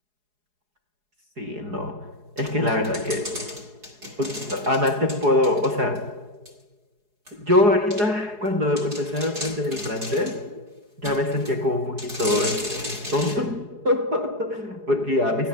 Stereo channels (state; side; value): late; left; 4.8 ms